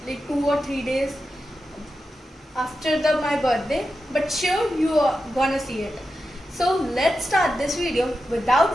like 2 or 3 days after my birthday, but sure you are gonna see it. So let's start this video without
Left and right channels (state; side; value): normal; both; correlation 0.90